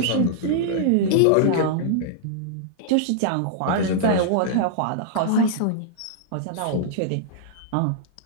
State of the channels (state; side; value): different; both; correlation -0.02